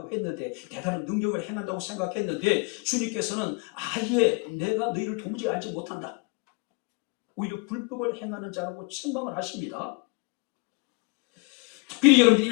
했는데 대단한 능력을 행한다고 생각했는데 주님께서는 아예 내가 너희를 도무지 알지 못한다. 오히려 불법을 행하는 자라고 책망을 하십니다. 특별히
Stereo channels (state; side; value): quieter; right; 31.0 dB